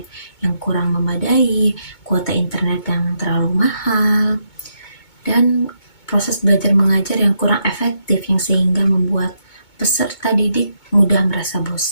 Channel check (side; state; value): right; late; 2.2 ms